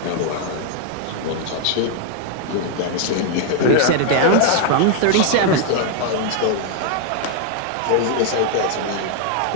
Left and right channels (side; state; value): both; different; correlation 0.00